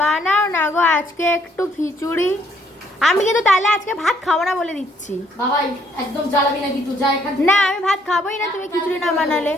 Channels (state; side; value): normal; both; correlation 0.67